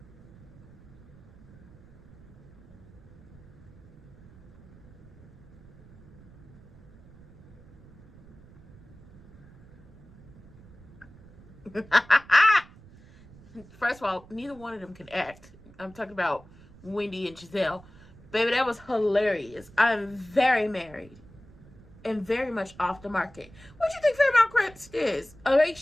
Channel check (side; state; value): right; noise; rumble, 22 dB below the sound